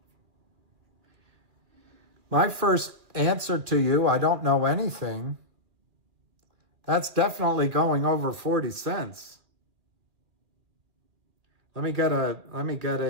My first answer to you, I don't know anything. That's definitely going over 40 cents. Let me get a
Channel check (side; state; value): left; late; 2.3 ms